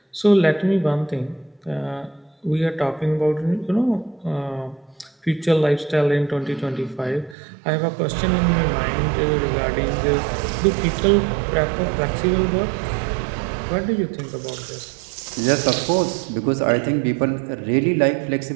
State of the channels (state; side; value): drops out; left; at 7.4 s